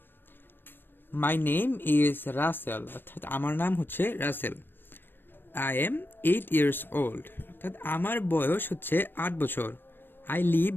মাই নেম ইজ রাসেল, অর্থাৎ আমার নাম হচ্ছে Rasel. I am 8 years old, অর্থাৎ আমার বয়স হচ্ছে 8 বছর। I live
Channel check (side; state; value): right; late; 0.099 ms